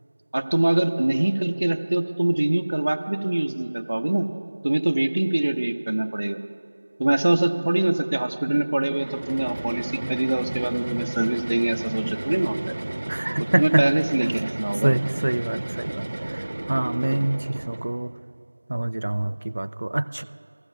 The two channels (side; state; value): both; inverted; correlation -1.00